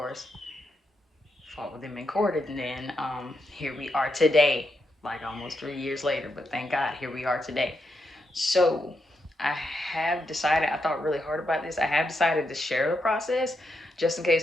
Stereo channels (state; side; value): normal; both; correlation 0.83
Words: Fought with them in court, and then here we are today, like almost 3 years later. But thank God, here we are today. So I have decided. I thought really hard about this. I have decided to share the process, just in